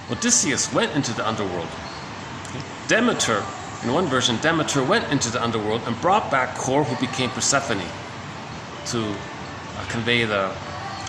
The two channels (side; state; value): both; identical; correlation 1.00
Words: Odysseus went into the underworld. Demeter, in one version, Demeter went into the underworld and brought back Core, who became Persephone, to convey the